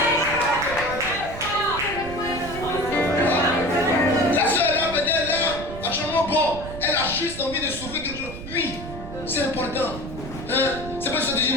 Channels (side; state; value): right; noise; rumble, 11 dB below the sound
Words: La soeur là, peut-être là, franchement bon, elle a juste envie de souffrir quelque chose. Oui, c'est important. Hein? C'est pas ça de dire